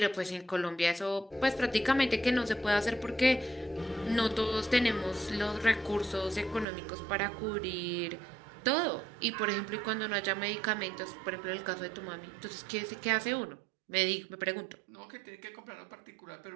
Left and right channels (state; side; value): drops out; left; at 6.7 s